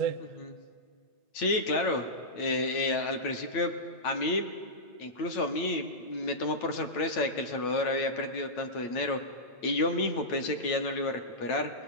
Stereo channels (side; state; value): right; late; 8.9 ms